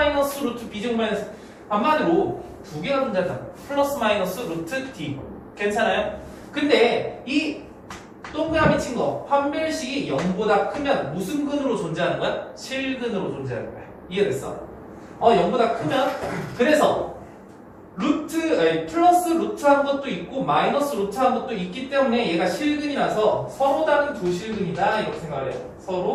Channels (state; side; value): identical; both; correlation 1.00